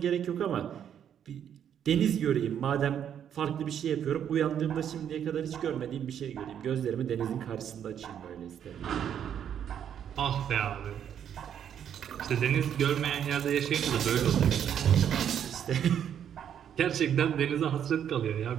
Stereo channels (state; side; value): quieter; left; 9.1 dB